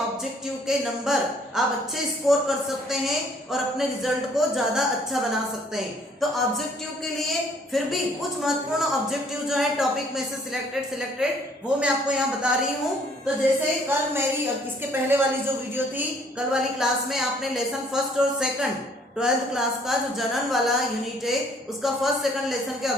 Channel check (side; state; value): both; normal; correlation 0.61